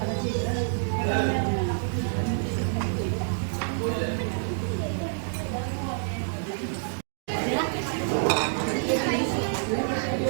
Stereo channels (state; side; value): silent; left; digital silence